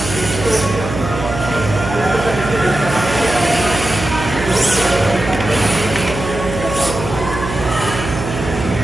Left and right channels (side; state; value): right; noise; hum, 7 dB below the sound